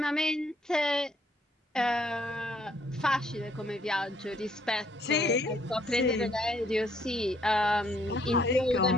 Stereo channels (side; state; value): both; normal; correlation 0.67